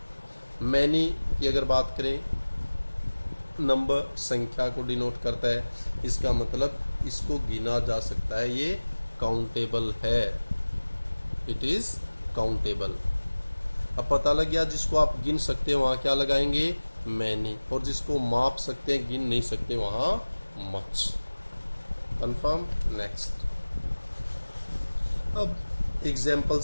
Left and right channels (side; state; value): both; inverted; correlation -1.00